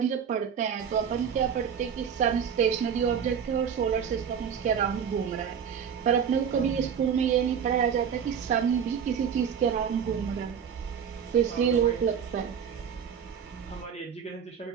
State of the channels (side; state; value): left; quieter; 7.6 dB